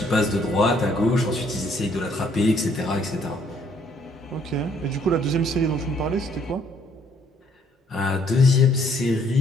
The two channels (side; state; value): both; normal; correlation 0.65